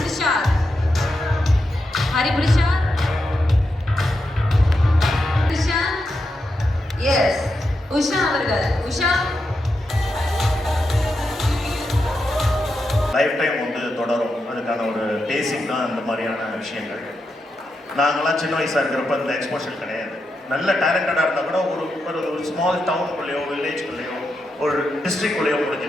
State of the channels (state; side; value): normal; both; correlation 0.86